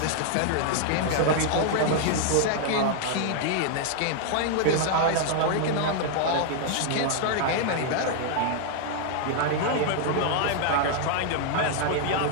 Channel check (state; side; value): different; both; correlation 0.00